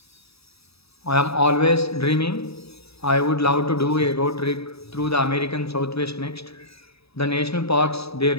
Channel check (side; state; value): right; late; 0.78 ms